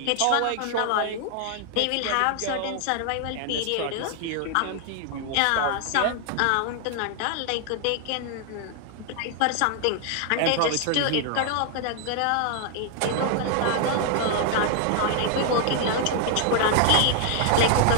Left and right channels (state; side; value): different; both; correlation 0.00